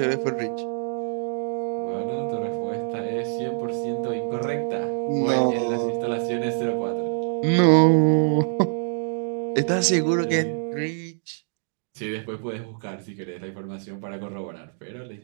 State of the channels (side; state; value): left; silent; digital silence